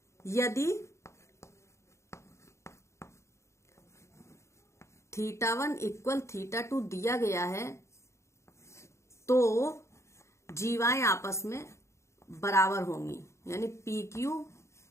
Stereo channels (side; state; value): right; late; 0.14 ms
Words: यदि θ1 इक्वल θ2 दिया गया है तो जीवाएं आपस में बराबर होंगी, यानी PQ